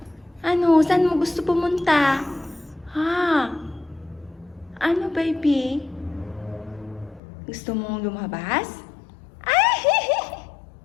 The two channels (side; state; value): right; drops out; at 7.2 s